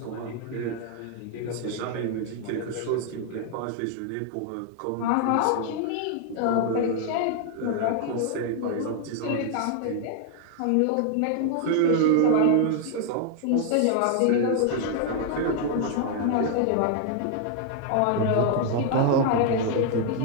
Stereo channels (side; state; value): both; different; correlation 0.00